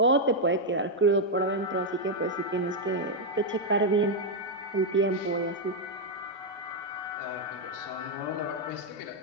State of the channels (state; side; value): normal; both; correlation 0.00